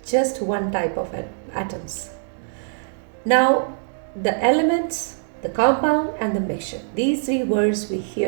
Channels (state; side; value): silent; left; 64 dB below the other